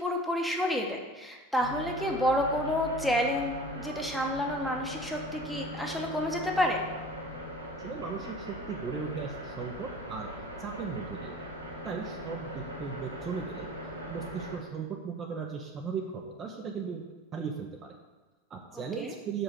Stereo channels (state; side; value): normal; both; correlation 0.43